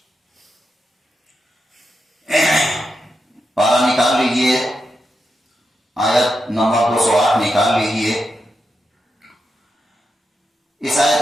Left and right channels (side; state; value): both; normal; correlation 0.87